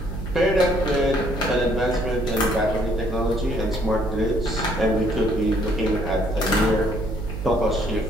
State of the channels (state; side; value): noise; right; hum, 7 dB below the sound